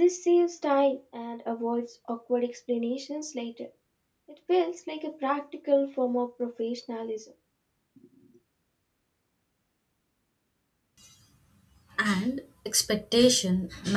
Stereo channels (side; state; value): both; identical; correlation 1.00